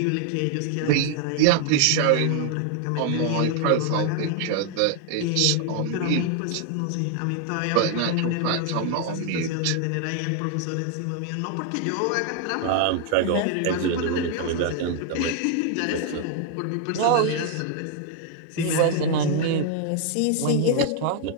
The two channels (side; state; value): both; different; correlation 0.00